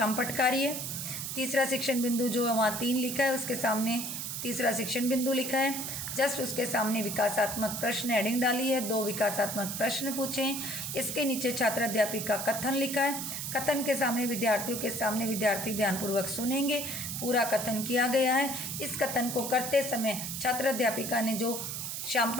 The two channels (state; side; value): noise; right; hiss, 5 dB below the sound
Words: कार्य। तीसरा शिक्षण बिंदु जो वहाँ 3 लिखा है उसके सामने तीसरा शिक्षण बिंदु लिखा है। जस्ट उसके सामने विकासात्मक प्रश्न हेडिंग डाली है। 2 विकासात्मक प्रश्न पूछे। इसके नीचे छात्र अध्यापिका कथन लिखा है। कथन के सामने विद्यार्थियों के सामने विद्यार्थी ध्यानपूर्वक सुनेंगे। पूरा कथन किया गया है। इस कथन को करते समय छात्र अध्यापिका ने जो